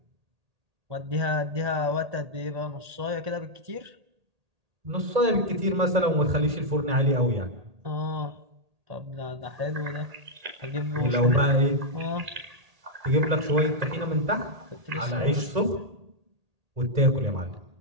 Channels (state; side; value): late; left; 1.8 ms